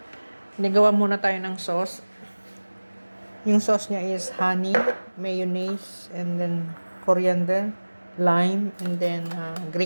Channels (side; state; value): both; inverted; correlation -1.00